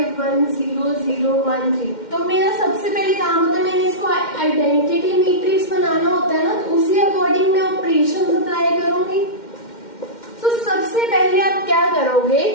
1 0 0 1 3, तो मेरा सबसे पहले काम होता है मैंने इसको आइडेंटिटी मैट्रिक्स बनाना होता है ना, तो उसी अकॉर्डिंग मैं ऑपरेशन अप्लाई करूंगी। तो सबसे पहले आप क्या करोगे,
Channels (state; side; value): late; right; 2.1 ms